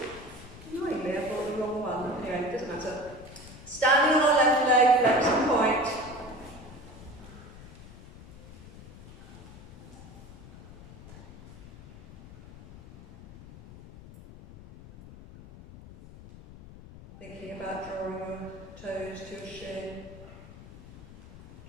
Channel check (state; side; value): noise; left; rumble, 17 dB below the sound